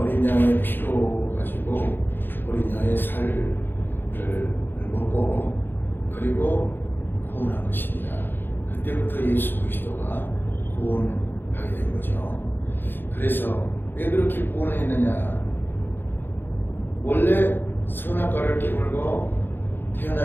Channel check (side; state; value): right; late; 0.098 ms